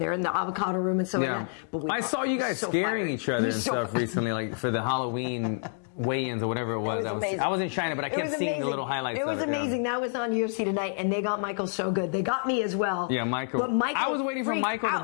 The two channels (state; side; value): silent; right; digital silence